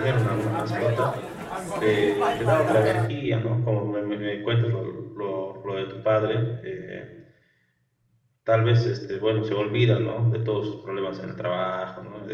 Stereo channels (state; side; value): identical; both; correlation 1.00